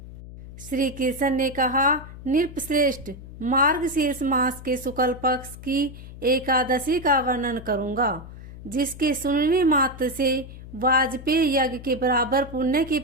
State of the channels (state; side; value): noise; left; hum, 14 dB below the sound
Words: श्री कृष्ण ने कहा, नृपश्रेष्ठ, मार्गशीर्ष मास के शुक्ल पक्ष की एकादशी का वर्णन करूंगा, जिसके सुनने मात्र से वाजपेयी यज्ञ के बराबर पुण्य की